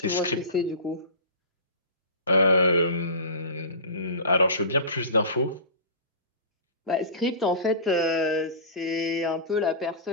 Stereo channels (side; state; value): both; inverted; correlation -0.32